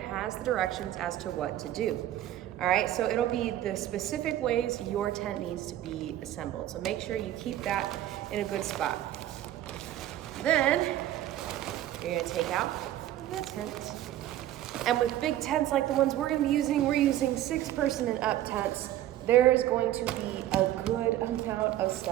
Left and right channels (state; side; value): quieter; left; 13.1 dB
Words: has the directions as to what to do. All right, so it'll be the specific ways your tent needs to be assembled. So make sure you keep that in a good spot. Then you're gonna take out the tent. And with big tents like the ones we're using 6-person and up tents. There is going to be a good amount of